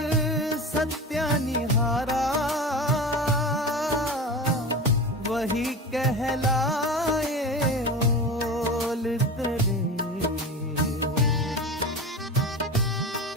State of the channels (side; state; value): both; normal; correlation 0.29